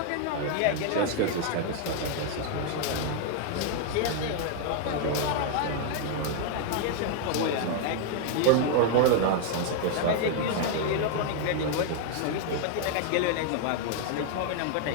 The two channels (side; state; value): both; different; correlation 0.00